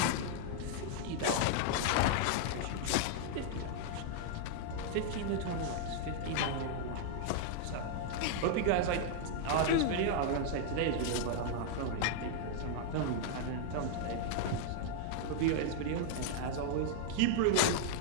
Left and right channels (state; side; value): different; both; correlation -0.01